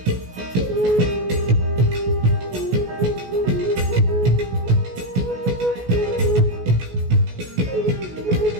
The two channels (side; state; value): left; late; 16 ms